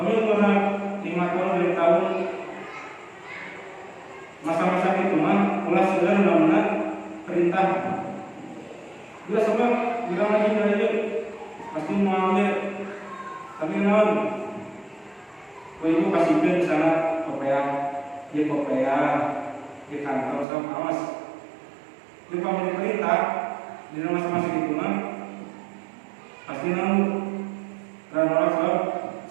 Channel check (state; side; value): drops out; left; at 20.5 s